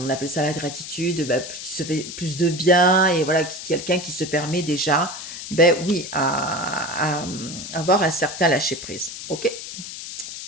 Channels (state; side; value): noise; left; hiss, 9 dB below the sound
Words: appelle ça la gratitude, ben, qui se fait plus de bien, et voilà, quelqu'un qui se permet déjà, ben oui, à avoir un certain lâcher prise. Ok.